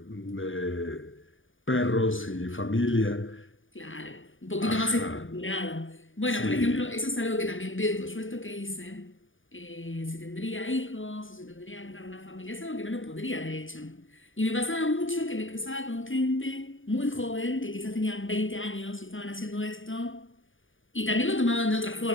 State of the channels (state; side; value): late; right; 0.57 ms